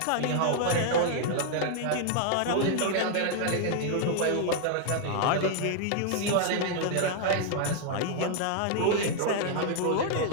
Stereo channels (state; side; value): different; both; correlation 0.00